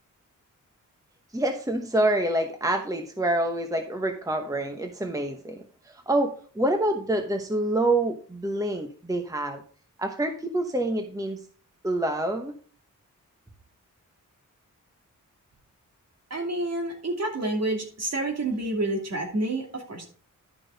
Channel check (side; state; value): both; normal; correlation 0.52